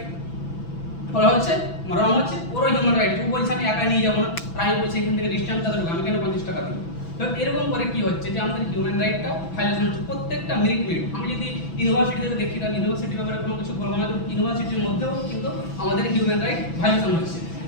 বলা হচ্ছে, রং হচ্ছে ওরও হিউম্যান রাইট। ও বলছে আমি একাই নিয়ে যাবো না, আর আমি বলছি এখান থেকে ডিস্টেন্স কত, আমি কেন 50 টাকা দেবো? তো এরকম করে কি হচ্ছে যে আমাদের হিউম্যান রাইটটা ভায়োলেশন হচ্ছে প্রত্যেকটা মিনিট। আমি যদি ইউনিভার্সিটিতে দেখি, তাহলে ইউনিভার্সিটির ব্যাপারে কোনো কিছু বলবো না, ইউনিভার্সিটির মধ্যেও কিন্তু আমাদের হিউম্যান রাইট ভায়োলেশন হচ্ছে।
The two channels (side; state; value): right; late; 6.0 ms